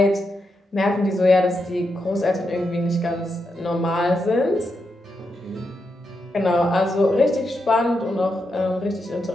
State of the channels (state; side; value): normal; both; correlation 0.84